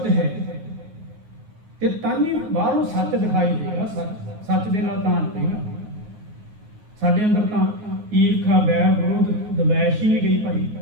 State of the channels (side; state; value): left; late; 9.4 ms